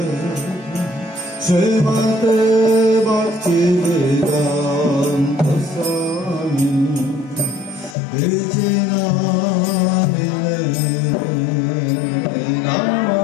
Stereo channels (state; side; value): drops out; right; at 8.0 s